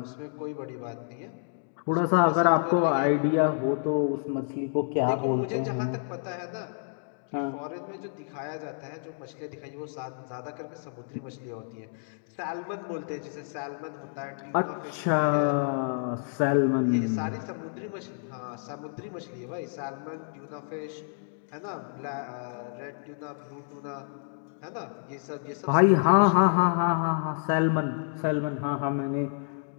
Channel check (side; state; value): right; silent; digital silence